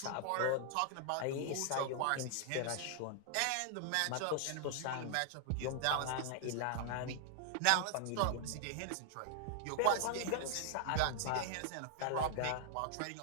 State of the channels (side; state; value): both; different; correlation -0.01